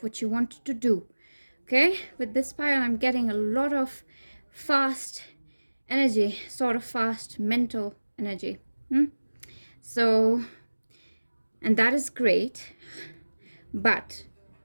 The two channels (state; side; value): inverted; both; correlation -1.00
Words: what you want to do. Okay, with this pile, I'm getting a lot of fast energy, sort of fast mental energy. So, and that is great, but